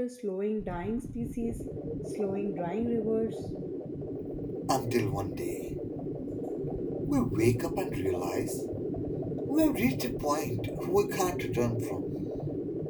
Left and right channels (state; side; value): identical; both; correlation 1.00